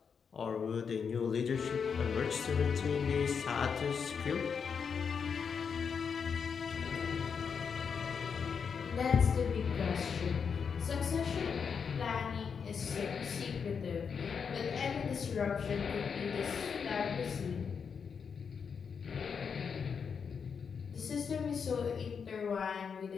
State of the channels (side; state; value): right; quieter; 6.3 dB